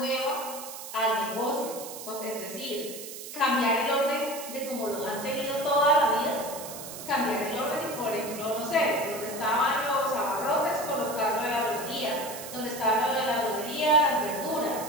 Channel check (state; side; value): noise; right; hiss, 11 dB below the sound